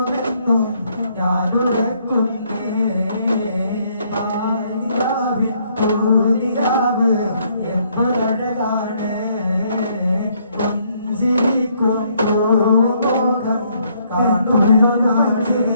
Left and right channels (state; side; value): inverted; both; correlation -0.69